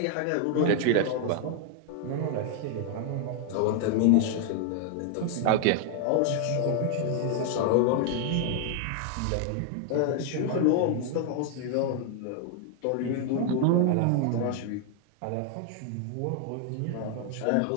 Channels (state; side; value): different; both; correlation 0.00